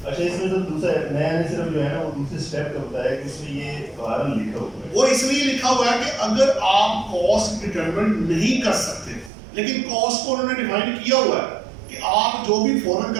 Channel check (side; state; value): left; drops out; at 9.3 s